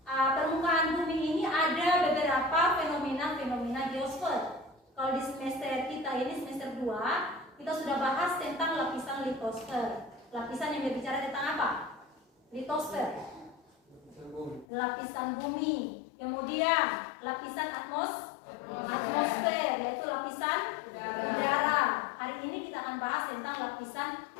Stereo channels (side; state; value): right; drops out; at 14.7 s